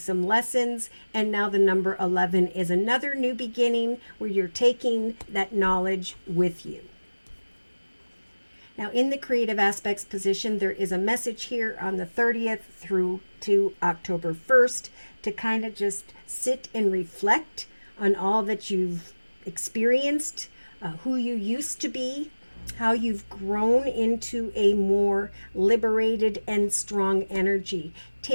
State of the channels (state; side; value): inverted; both; correlation -1.00